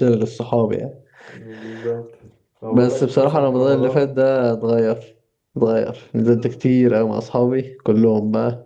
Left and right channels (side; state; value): both; identical; correlation 1.00